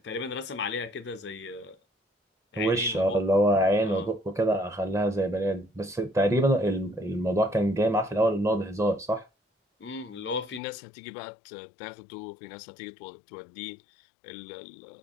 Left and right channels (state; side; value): drops out; right; at 10.6 s